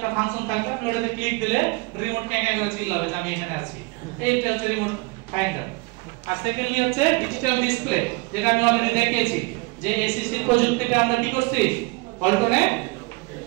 ফাংশন থাকবে, আপনি ওটাতে ক্লিক দিলে রিমোট ক্যাঁ করে চিল্লাবে যে আমি এখানে আছি। এইটা হচ্ছে রিমোট ফাইন্ডার। আর সেকেন্ডলি হচ্ছে ডিজিটাল ডিসপ্লে, যেটা আমি অলরেডি দেখিয়েছি যে এসিসি প্রযুক্তিতে আমরা কি করছি, পল্টনে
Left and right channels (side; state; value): left; quieter; 26.6 dB